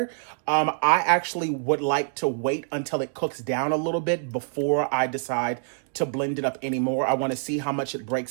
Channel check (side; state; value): left; silent; digital silence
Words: I actually would like to wait until it cooks down a little bit before I decide to blend it up anymore. I want to see how much it